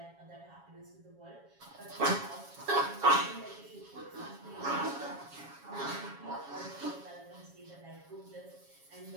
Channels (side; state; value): left; late; 7.2 ms